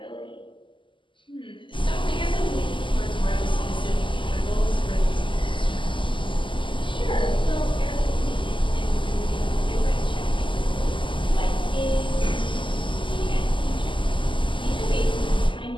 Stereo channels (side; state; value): right; late; 0.24 ms